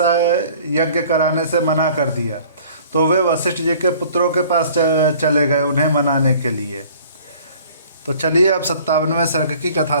यज्ञ कराने से मना कर दिया, तो वे वशिष्ठ जी के पुत्रों के पास चले गए उन्हें मनाने के लिए। तो चलिए अब 57वें सर्ग की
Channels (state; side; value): inverted; both; correlation -0.52